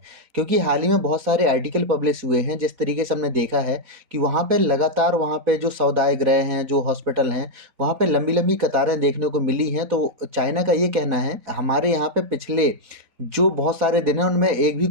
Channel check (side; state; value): left; late; 3.9 ms